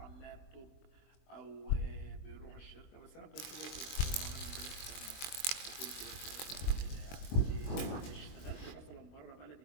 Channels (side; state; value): right; late; 22 ms